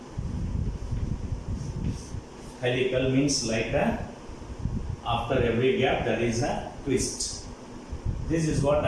Helical means like a, after every gap there is a twist. This is what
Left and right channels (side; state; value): both; identical; correlation 1.00